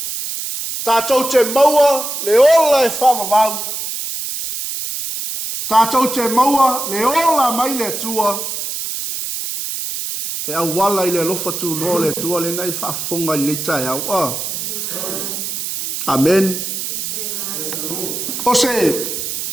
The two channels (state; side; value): noise; right; hiss, 4 dB below the sound